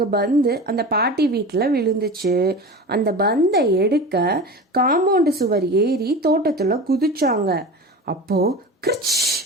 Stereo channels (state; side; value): normal; both; correlation 0.31